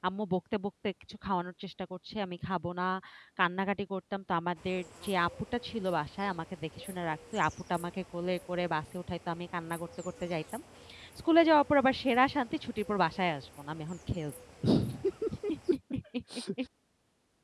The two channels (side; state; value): both; identical; correlation 1.00